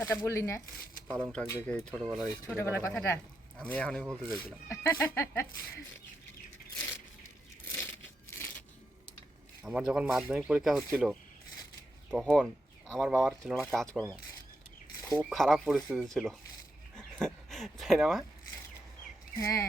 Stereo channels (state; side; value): normal; both; correlation 0.85